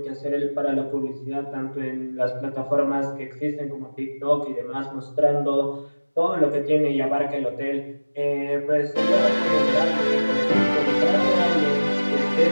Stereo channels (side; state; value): both; inverted; correlation -1.00